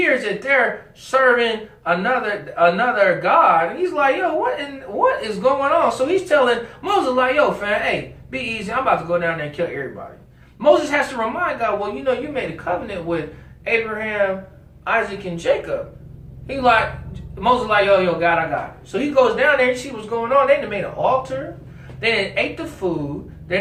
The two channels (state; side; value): identical; both; correlation 1.00